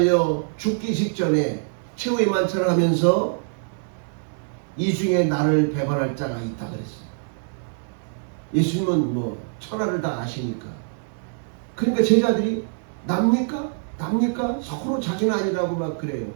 죽기 직전에 최후의 만찬을 하면서 이 중에 나를 배반할 자가 있다 그랬어요. 예수님은 뭐 천하를 다 아시니까. 그러니까 제자들이 납니까? 납니까? 서로 자기는 아니라고 막 그래요.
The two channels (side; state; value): left; silent; digital silence